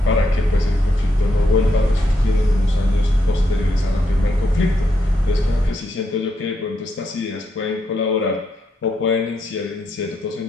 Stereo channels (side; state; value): both; normal; correlation 0.80